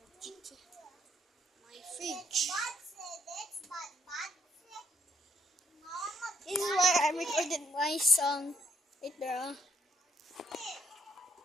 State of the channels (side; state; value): both; normal; correlation 0.70